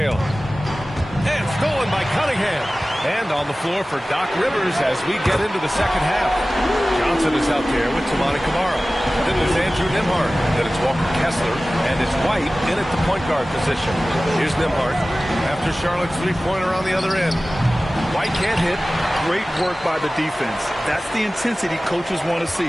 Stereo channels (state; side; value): normal; both; correlation 0.97